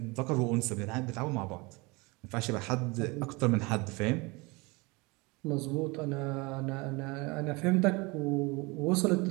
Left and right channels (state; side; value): quieter; left; 26.1 dB